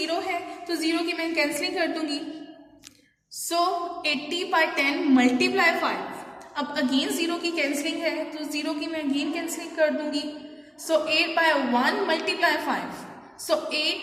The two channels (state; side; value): identical; both; correlation 1.00